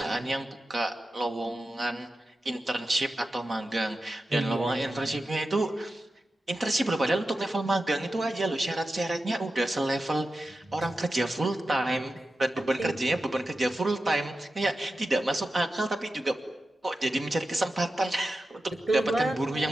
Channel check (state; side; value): normal; both; correlation 0.92